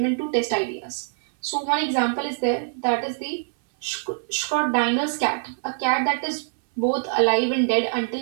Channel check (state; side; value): silent; left; 61 dB below the other